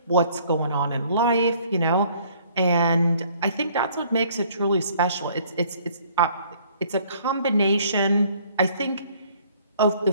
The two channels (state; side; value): inverted; both; correlation -0.59